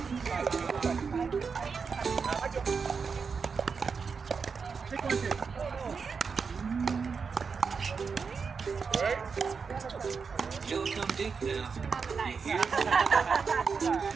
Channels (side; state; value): left; quieter; 5.5 dB